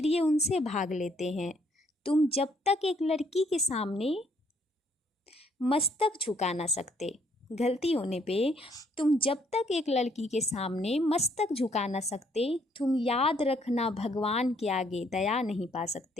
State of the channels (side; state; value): both; normal; correlation 0.67